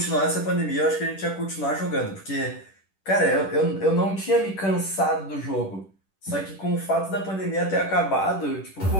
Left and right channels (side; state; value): right; late; 10 ms